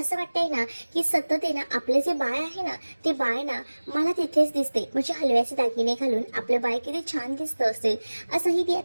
वाटतंय ना की सतत आहे ना आपलं जे बाळ आहे ना ते बाळ ना मला तिथेच दिसते. म्हणजे हलव्याचे दागिने घालून आपलं बाळ किती छान दिसतं असेल असंही ती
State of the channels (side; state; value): both; inverted; correlation -1.00